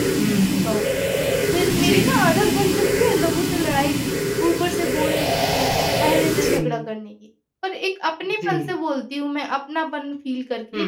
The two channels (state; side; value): identical; both; correlation 1.00